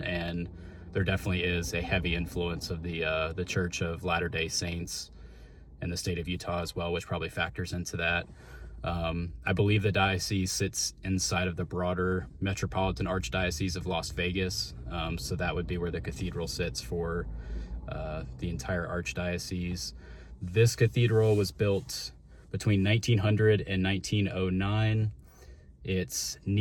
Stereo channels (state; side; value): identical; both; correlation 1.00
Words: there definitely is a heavy influence of the Church of Latter-day Saints in the state of Utah as well, which probably factors into that. I believe the diocese sits inside of the broader Metropolitan Archdiocese of Las Vegas, so that would be where the cathedral sits for the entire archdiocese. This cathedral was built between 1900 and 1909. It's